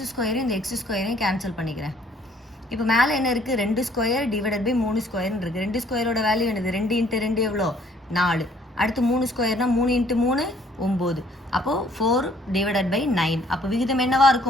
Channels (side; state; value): both; normal; correlation 0.61